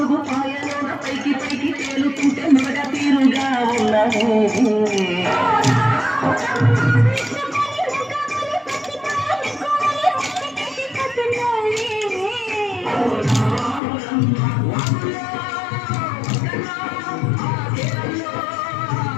పాయలోన పైకి పైకి తేలుతుంటే మగ తీరుగా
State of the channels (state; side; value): drops out; right; at 13.8 s